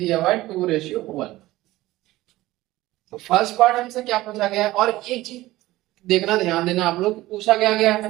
हुआ है 2:1। तो फर्स्ट पार्ट हमसे क्या पूछा गया है, और एक चीज देखना, ध्यान देना आप लोग, पूछा गया है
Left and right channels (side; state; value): left; quieter; 17.3 dB